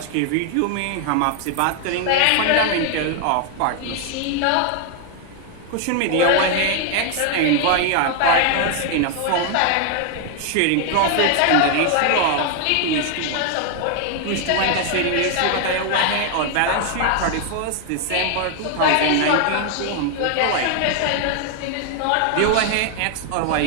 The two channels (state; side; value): different; both; correlation 0.00